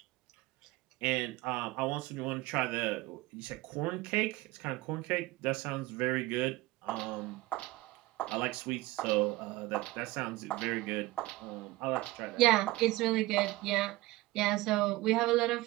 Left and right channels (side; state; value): left; quieter; 19.5 dB